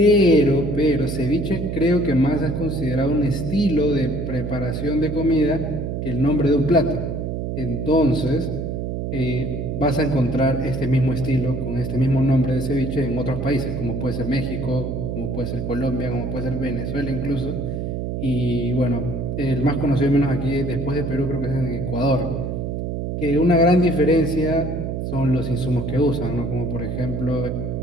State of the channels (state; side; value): noise; right; hum, 3 dB below the sound